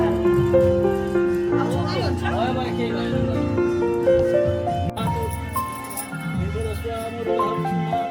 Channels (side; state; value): both; identical; correlation 1.00